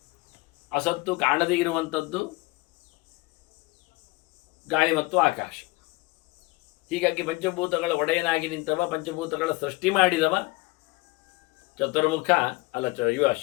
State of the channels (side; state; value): right; quieter; 23.2 dB